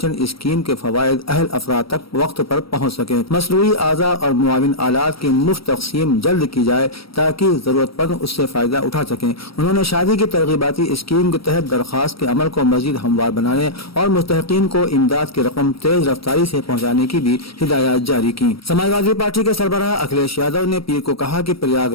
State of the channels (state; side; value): late; right; 0.75 ms